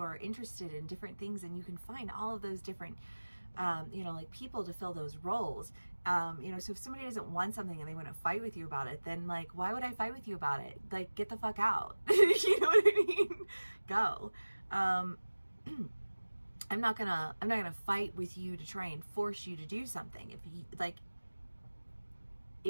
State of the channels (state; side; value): inverted; both; correlation -1.00